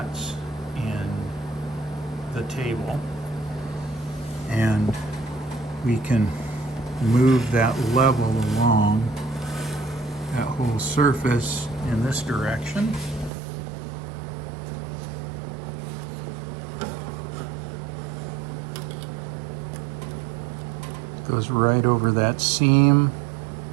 in the table, and we can move that level along that whole surface in this direction. Goes right over that seam.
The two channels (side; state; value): left; drops out; at 13.3 s